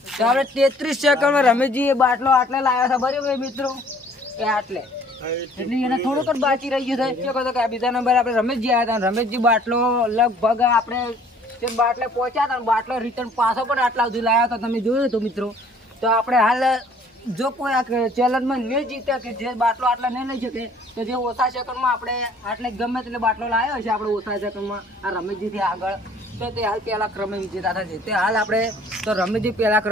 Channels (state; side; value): normal; both; correlation 0.56